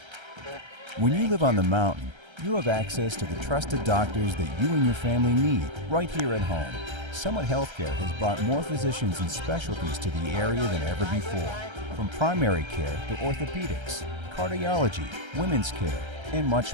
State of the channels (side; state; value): left; late; 1.3 ms